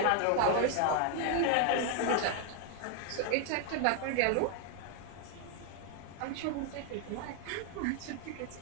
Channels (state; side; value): different; both; correlation 0.00